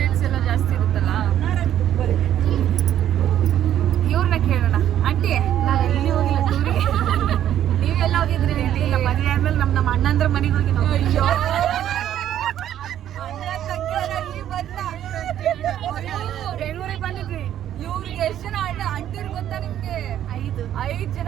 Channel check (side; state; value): left; quieter; 11.1 dB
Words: ಎಲ್ಲ ಜಾಸ್ತಿ ಇರುತ್ತಲ್ಲ. ಇವ್ರನ್ನ ಕೇಳೋಣ. ಆಂಟಿ, ನಾನು ಎಲ್ಲಿ ಹೋಗಿಲ್ಲ ಟೂರಿಗೆ. ನೀವೆಲ್ಲ ಹೋಗಿದ್ರಿ? ಇಲ್ಲ, ಮದುವೆ ಆದ್ಮೇಲೆ ನಮ್ಮ ಅಣ್ಣಂದ್ರ ಮನೆಗೆ ಹೋಗಿ ನಾವು. ಅಯ್ಯೋ, ಬೆಂಗಳೂರಿಗೆ ಬಂದಿದ್ವಿ. ಇವ್ರಿಗೆ ಎಷ್ಟು ಜನ ಅಂಟಿರು ಗೊತ್ತಾ ನಿಮ್ಗೆ? 5 ಜನ